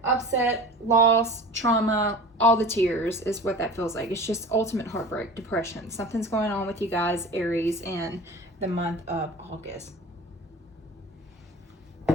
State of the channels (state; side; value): normal; both; correlation 0.37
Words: upset, loss, trauma, all the tears is what that feels like. It's just ultimate heartbreak, depression. Something's going on with you guys, Aries, in the month of August.